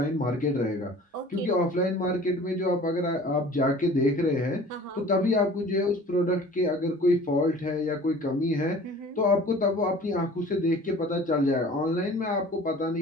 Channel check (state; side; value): normal; both; correlation 0.46